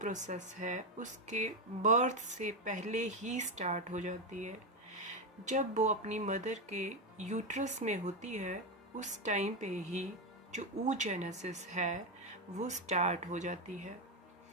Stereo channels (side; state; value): both; normal; correlation 0.09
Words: है उसके बर्थ से पहले ही स्टार्ट हो जाती है। जब वो अपनी मदर के यूट्रस में होती है उस टाइम पे ही जो oogenesis है वो स्टार्ट हो जाती है।